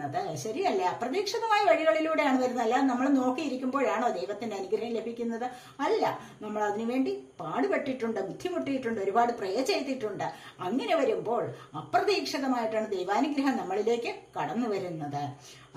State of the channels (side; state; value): both; identical; correlation 1.00